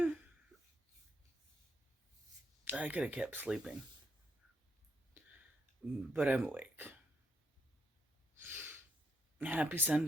I could have kept sleeping, but I'm awake. Happy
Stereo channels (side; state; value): both; normal; correlation 0.76